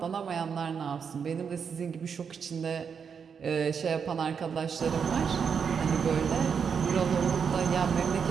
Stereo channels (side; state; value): left; quieter; 6.6 dB